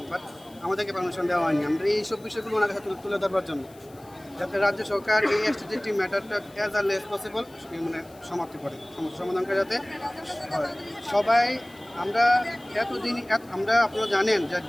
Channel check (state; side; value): noise; left; hiss, 26 dB below the sound